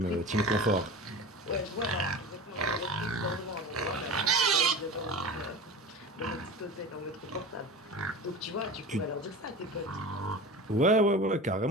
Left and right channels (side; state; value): both; normal; correlation 0.32